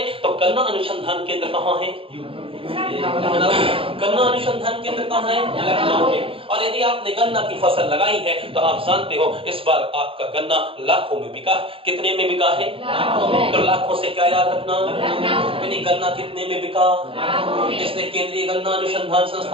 तो गन्ना अनुसंधान केंद्र कहां है? गन्ना अनुसंधान केंद्र कहाँ है? लखनऊ में। और यदि आपने गन्ना की फसल लगाई है तो आप जानते हो इस बार आपका गन्ना लाखों में बिका। कितने में बिका है? तो लाखों से क्या याद रखना, यानी गन्ना कितने में बिका? इसलिए केंद्रीय गन्ना अनुसंधान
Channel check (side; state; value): left; late; 0.26 ms